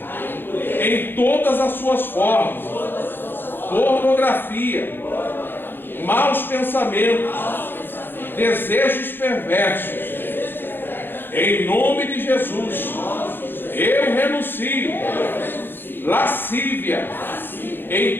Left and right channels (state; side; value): late; right; 0.10 ms